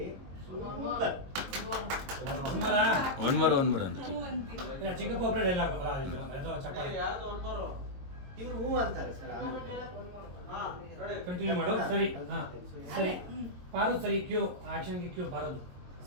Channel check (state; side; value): late; left; 22 ms